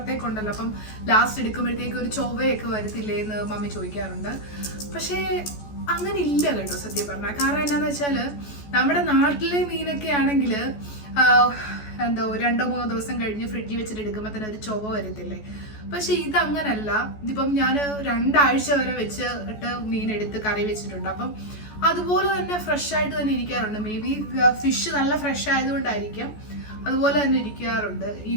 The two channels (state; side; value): late; right; 14 ms